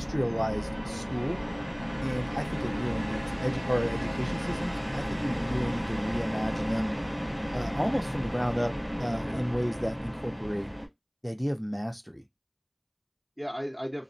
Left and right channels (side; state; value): both; identical; correlation 1.00